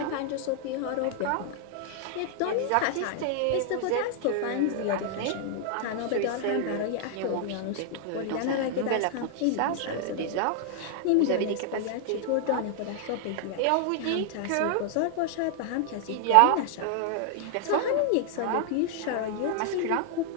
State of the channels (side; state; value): both; different; correlation 0.00